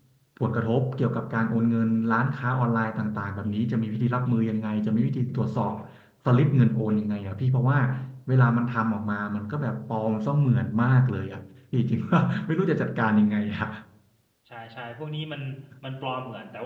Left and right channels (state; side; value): identical; both; correlation 1.00